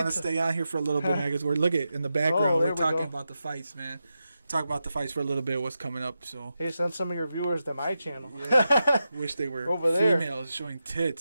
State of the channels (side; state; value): both; inverted; correlation -0.89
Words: to Pizza. stay on here for a little bit, man, because we're look at in the background. there We're we talking go. about the fights, man. Talk about the fights for a little bit. What's coming up? So hey, send some of your viewers to my channel. wish they were Over there. females showing